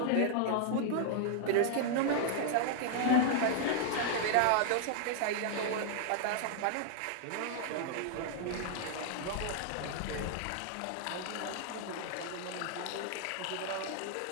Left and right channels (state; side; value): different; both; correlation 0.00